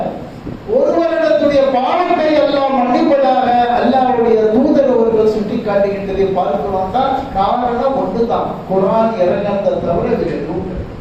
ஒரு வருடத்துடைய பாவத்தை எல்லாம் மன்னிப்பதாக அல்லாஹ்வுடைய தூதர் அவர்கள் சுட்டி காட்டுகின்றதை பார்க்கிறோம். தான் காரணம் ஒன்றுதான், குர்ஆன் இறங்கினதை தவிர வேறு எதுவும் கிடையாது.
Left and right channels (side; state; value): both; identical; correlation 1.00